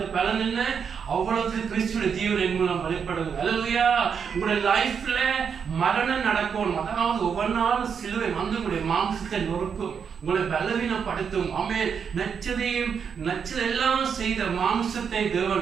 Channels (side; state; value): left; quieter; 6.8 dB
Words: பலன் என்ன? அவ்வளவு கிறிஸ்துவின் ஜீவன் என் மூலம் வெளிப்படுது. அல்லேலூயா. உங்களுடைய லைஃப்ல மரணம் நடக்கும். அதாவது ஒவ்வொரு நாளும் சிலுவை வந்து உங்களுடைய மாம்சத்தை நொறுக்கும், உங்களை பலவீனப்படுத்தும். நச்சதெல்லாம் செய்த மாம்சத்தை